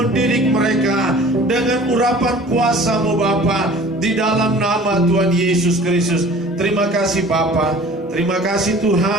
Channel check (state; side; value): normal; both; correlation 0.46